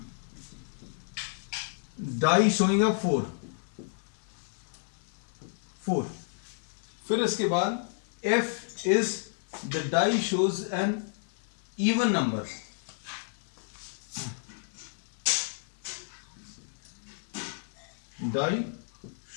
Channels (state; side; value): silent; right; digital silence